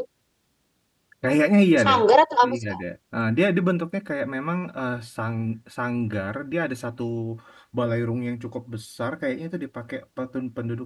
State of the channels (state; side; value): identical; both; correlation 1.00